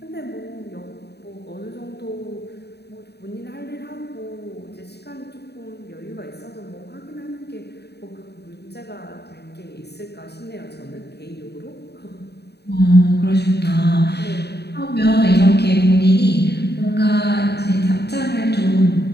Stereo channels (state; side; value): late; right; 0.48 ms